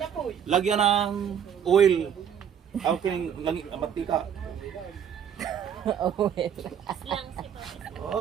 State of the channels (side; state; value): left; quieter; 8.5 dB